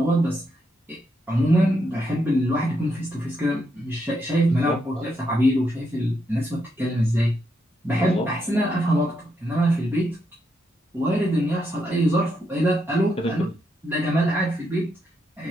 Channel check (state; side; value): normal; both; correlation 0.80